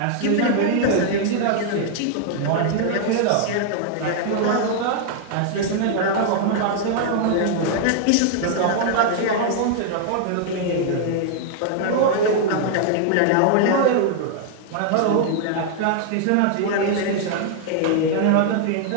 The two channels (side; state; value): both; different; correlation -0.01